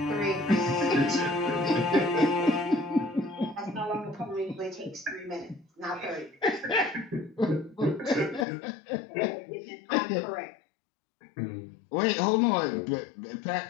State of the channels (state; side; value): drops out; right; at 8.5 s